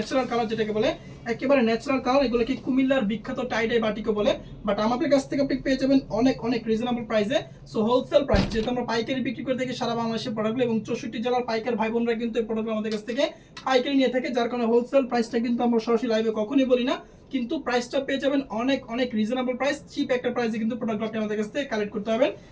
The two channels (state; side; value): identical; both; correlation 1.00